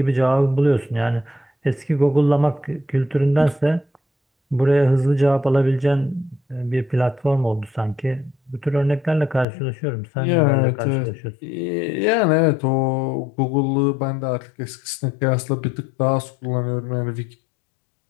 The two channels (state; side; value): drops out; right; at 9.5 s